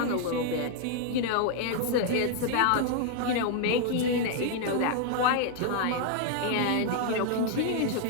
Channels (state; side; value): different; both; correlation 0.00